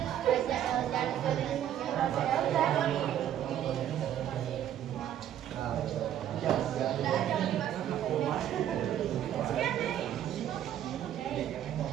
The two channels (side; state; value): left; quieter; 10.9 dB